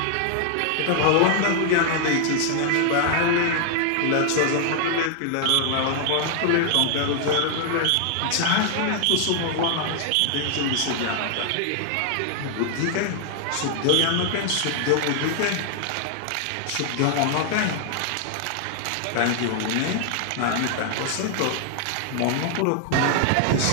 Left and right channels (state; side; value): different; both; correlation 0.00